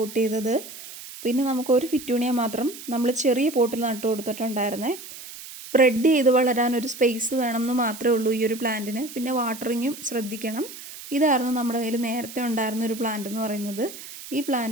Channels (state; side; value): noise; right; hiss, 14 dB below the sound